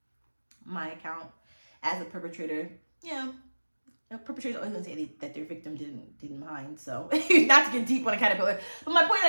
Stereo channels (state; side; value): inverted; both; correlation -1.00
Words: my account as a perpetrator, a perpetrator's always gonna say that their victim didn't mind. So not to get deep on a caterpillar, but my point is